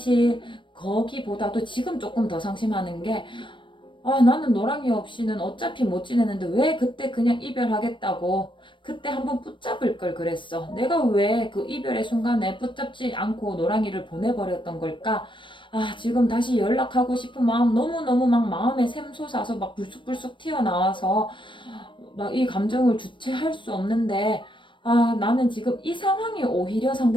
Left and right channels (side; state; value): right; late; 0.24 ms